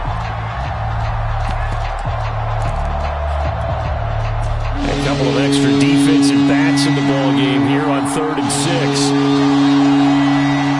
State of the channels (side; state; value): both; identical; correlation 1.00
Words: A couple of extra defensive backs in the ball game here on 3rd and 6.